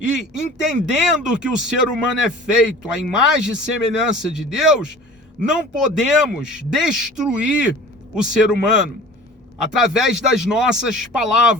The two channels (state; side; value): normal; both; correlation 0.43